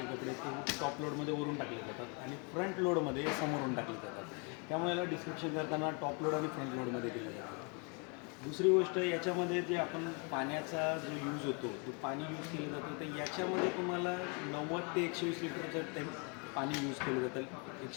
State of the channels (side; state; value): right; quieter; 34.2 dB